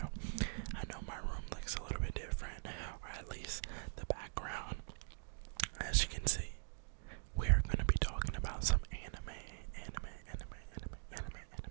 I know my room looks a little bit different, or at least the background. As you can see, we are going to be talking about some anime.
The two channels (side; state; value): left; silent; digital silence